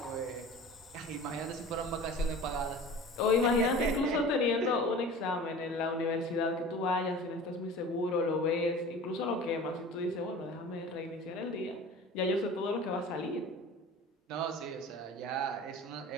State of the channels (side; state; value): both; normal; correlation 0.39